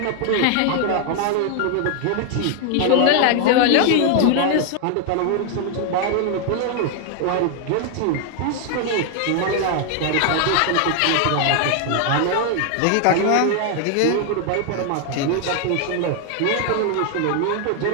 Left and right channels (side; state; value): both; different; correlation 0.00